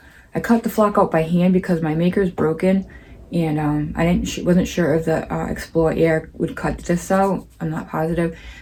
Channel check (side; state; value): both; identical; correlation 1.00